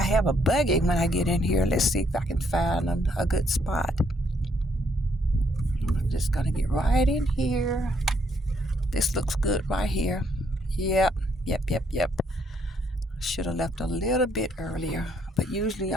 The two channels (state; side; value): normal; both; correlation 0.71